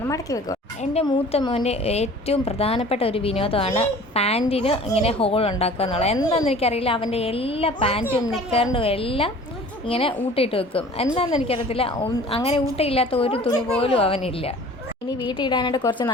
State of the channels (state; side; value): normal; both; correlation 0.46